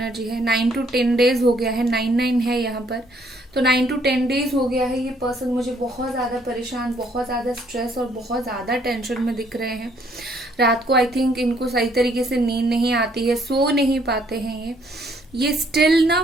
है, 9 to 10 days हो गया है, 9 है यहाँ पर, तो 9 to 10 days हो गया है। ये पर्सन मुझे बहुत ज्यादा परेशान, बहुत ज्यादा स्ट्रेस और बहुत ज्यादा टेंशन में दिख रहे हैं। रात को आई थिंक इनको सही तरीके से नींद नहीं आती है, सो नहीं पाते हैं ये स्टिल ना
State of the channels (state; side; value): normal; both; correlation 0.66